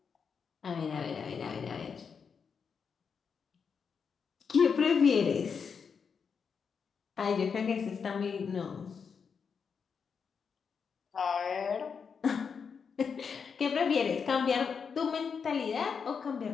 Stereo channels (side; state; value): right; quieter; 6.1 dB